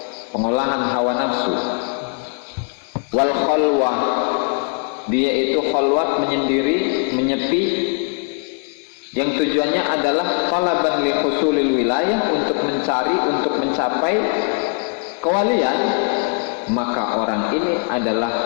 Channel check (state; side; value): quieter; right; 39.9 dB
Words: pengolahan hawa nafsu, wal khalwah, dia itu khalwat, menyendiri, menyepi, yang tujuannya adalah talaban li husulil wilayah, untuk mencari, untuk mencapai kewalian, maka orang ini adalah